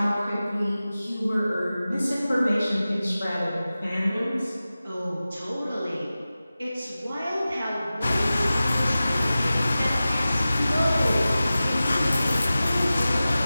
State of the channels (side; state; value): both; inverted; correlation -0.96